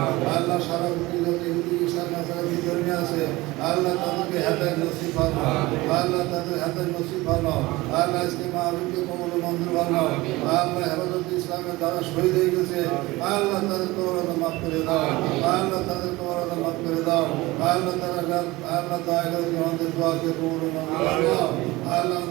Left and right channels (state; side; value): quieter; left; 20.5 dB